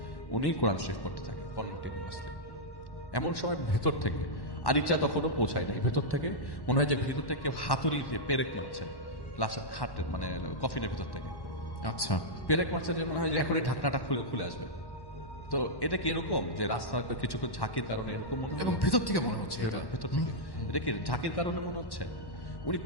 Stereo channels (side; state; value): right; late; 1.1 ms